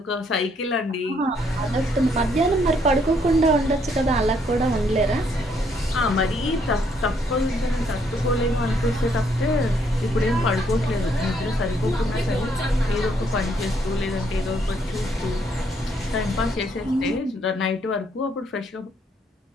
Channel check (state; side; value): normal; both; correlation 0.70